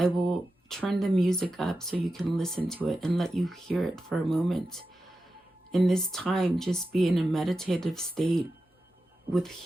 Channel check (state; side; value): normal; both; correlation 0.92